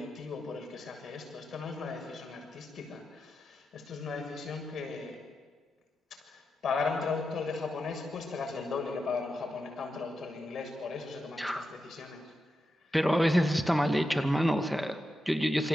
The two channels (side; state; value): both; normal; correlation 0.88